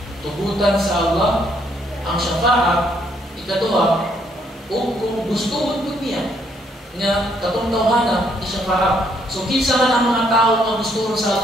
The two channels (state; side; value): normal; both; correlation 0.70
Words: tugutan sa Allah ang syafa'a ikaduha o kung gusto mo niya nga katong tawhana isyafa'a. So kinsa man ang mga tao nga gusto sa